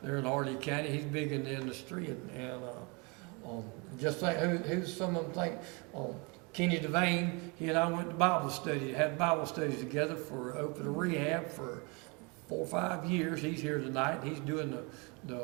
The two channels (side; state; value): left; quieter; 30.3 dB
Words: They're in Hardee County. He's big in the industry, and just think who's some of them think. Kenny Devane, he and I went to Bible study, had Bible studies together for open rehab for 4 or 5 years. He's here tonight. He's doing the